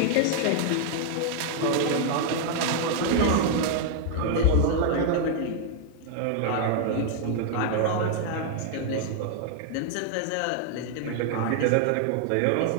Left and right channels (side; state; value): both; different; correlation 0.00